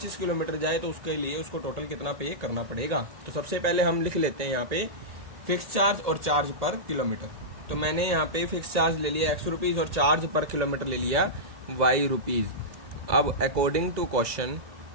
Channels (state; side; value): late; left; 1.8 ms